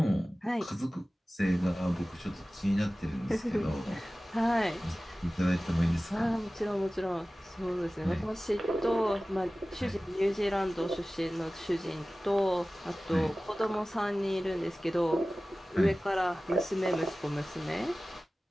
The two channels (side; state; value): both; normal; correlation 0.97